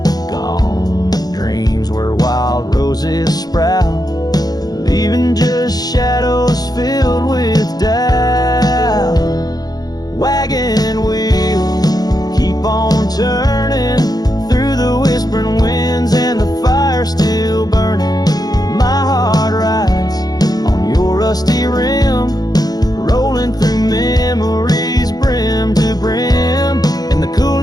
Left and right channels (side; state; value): right; late; 0.19 ms